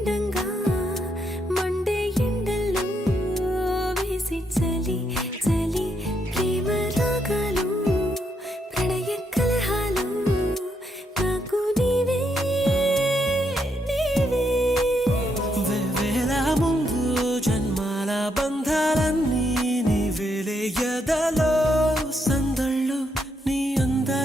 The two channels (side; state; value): both; normal; correlation 0.78